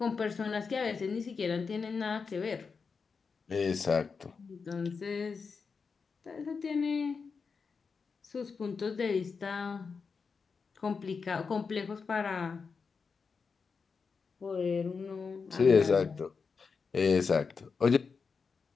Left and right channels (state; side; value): quieter; right; 5.2 dB